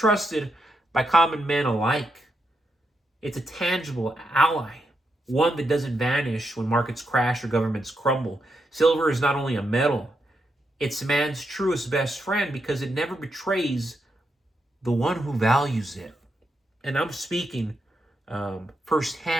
by common men alike. It's a tangible ally, one that doesn't vanish when markets crash or governments crumble. Silver is not only a metal, it's man's truest best friend because it never betrays the one who values it. And I'm speaking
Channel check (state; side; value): normal; both; correlation 0.82